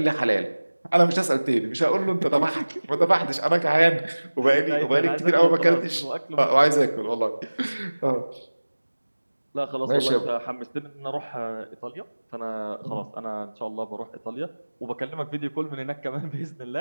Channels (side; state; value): both; inverted; correlation -1.00